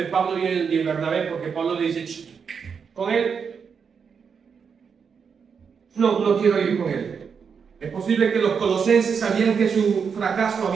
Pablo y Bernabé, porque Pablo le dice, con él, no quiero ir con él. Es posible que los colosenses sabían que su fracaso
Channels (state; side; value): quieter; left; 6.3 dB